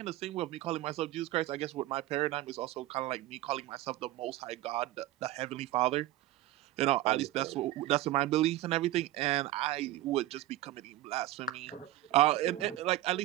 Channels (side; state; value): left; quieter; 15.8 dB